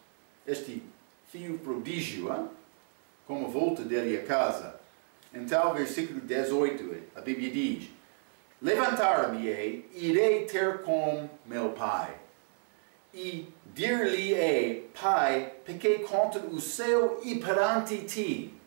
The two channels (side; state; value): left; silent; 57 dB below the other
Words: Este filho prodígio, hein? Como volta dele a casa. Então, versículo 18, a Bíblia diz: levantar-me-ei, irei ter com meu pai. E dir-lhe-ei: Pai, pequei contra o céu e perante ti.